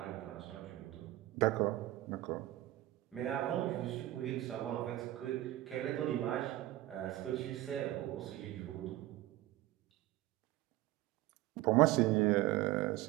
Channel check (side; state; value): left; quieter; 16.1 dB